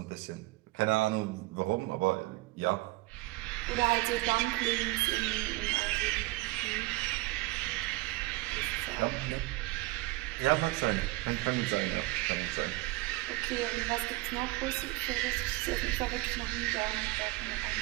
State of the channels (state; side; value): quieter; left; 20.3 dB